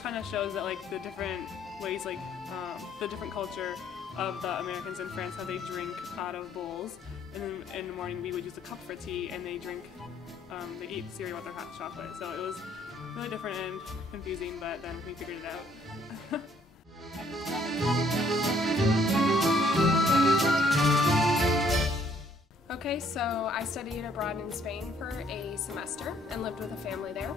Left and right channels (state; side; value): normal; both; correlation 0.64